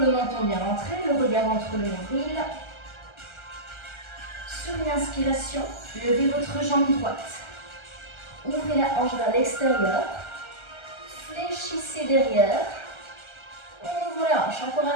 le menton bien rentré, le regard entre le nombril. Sur une inspiration, levez votre jambe droite. Ouvrez la hanche vers l'extérieur. Fléchissez derrière. On ouvre la hanche encore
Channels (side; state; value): right; late; 1.3 ms